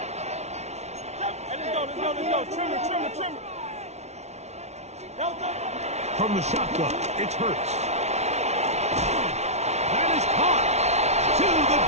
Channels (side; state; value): left; late; 0.32 ms